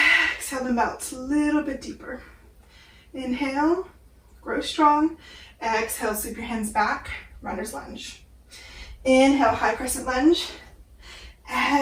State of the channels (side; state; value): both; identical; correlation 1.00